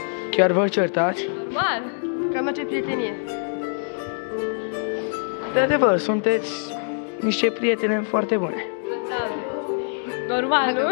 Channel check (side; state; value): right; silent; digital silence